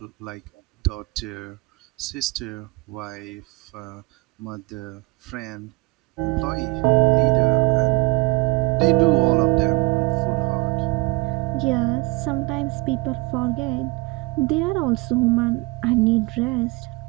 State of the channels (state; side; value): quieter; left; 25.5 dB